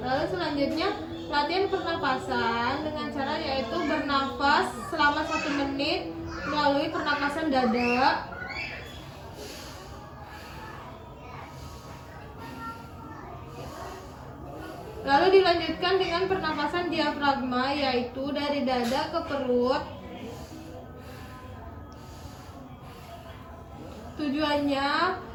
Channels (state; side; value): identical; both; correlation 1.00